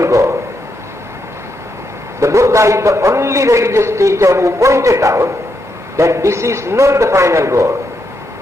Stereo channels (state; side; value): normal; both; correlation 0.81